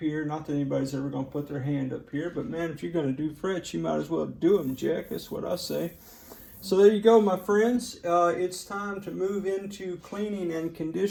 Not that anybody's ever going to put their hand up here, but man, if you're going to do frets, you might as well do them, Jack. That's what I say. So there you go, my friends. It's time to move into cleaning and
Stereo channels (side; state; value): both; identical; correlation 1.00